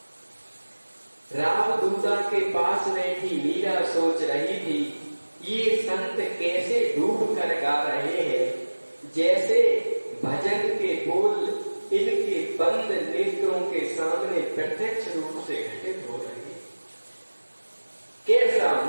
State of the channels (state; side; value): inverted; both; correlation -1.00